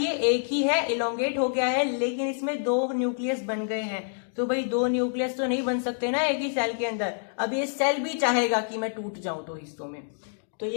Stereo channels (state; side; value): silent; right; digital silence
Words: एक ही है, इलोंगेट हो गया है, लेकिन इसमें दो न्यूक्लियस बन गए हैं। तो भाई दो न्यूक्लियस तो नहीं बन सकते ना एक ही सेल के अंदर। अब ये सेल भी चाहेगा कि मैं टूट जाऊं दो हिस्सों में, तो